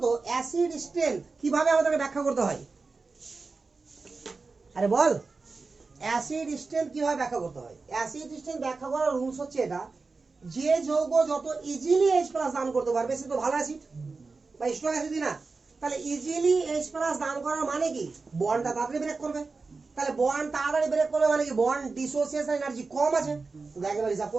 তো অ্যাসিড স্ট্রেংথ কিভাবে আমাদেরকে ব্যাখ্যা করতে হয়? আরে বল, অ্যাসিড স্ট্রেংথ কিভাবে ব্যাখ্যা করতে হয়? অ্যাসিড স্ট্রেংথ ব্যাখ্যা করার রুলস হচ্ছে এটা, যে যৌগ যত ইজিলি H+ দান করতে পারবে সে তো ভালো অ্যাসিড বা স্ট্রং অ্যাসিড না। তাহলে ইজিলি H+ দান করার মানে কি? বন্ডটা তাড়াতাড়ি ব্রেক করবে। তাহলে বন্ড তাড়াতাড়ি ব্রেক করবে মানে কি? বন্ড ডিসোসিয়েশন এনার্জি কম আছে। দেখ এবার হিসাব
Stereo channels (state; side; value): quieter; left; 4.1 dB